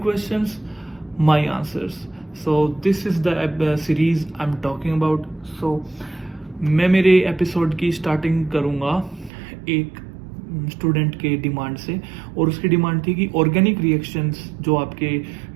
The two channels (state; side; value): drops out; left; at 9.3 s